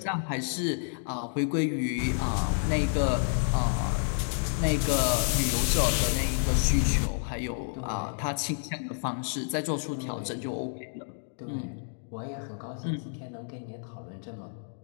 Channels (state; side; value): silent; right; digital silence